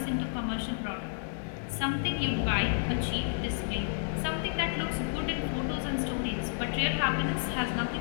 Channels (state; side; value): silent; right; digital silence